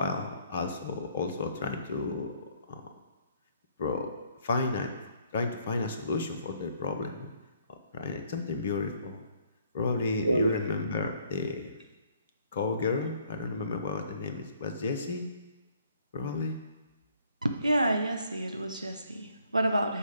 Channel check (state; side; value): inverted; both; correlation -0.64